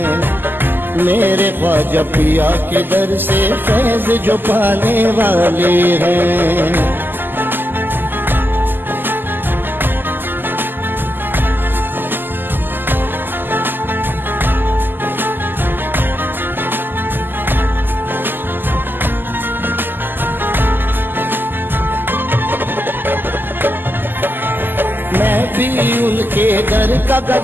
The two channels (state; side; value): late; left; 0.092 ms